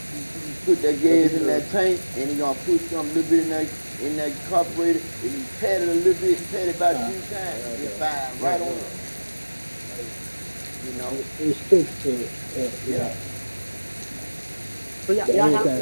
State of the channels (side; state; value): both; inverted; correlation -1.00